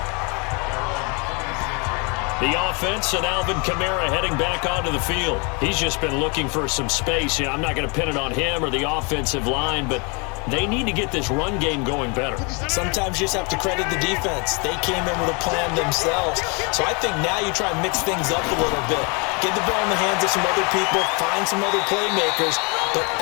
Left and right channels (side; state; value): right; quieter; 32.2 dB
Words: The offense and Alvin Kamara heading back onto the field. He's just been looking for some space. Yeah, I'm not going to pin it on him or the offensive line, but they need to get this run game going better. Sometimes you just have to credit the defense. They came in with a plan themselves. So I think now you try and mix things up a little bit. Get the ball in the hands of some other people, find some other playmakers, but